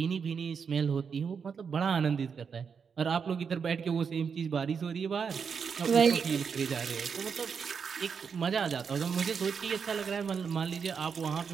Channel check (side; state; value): left; quieter; 6.3 dB